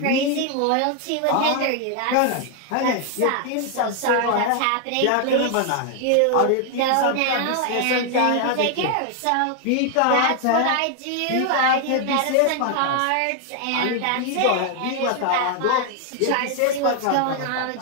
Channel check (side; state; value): both; different; correlation 0.00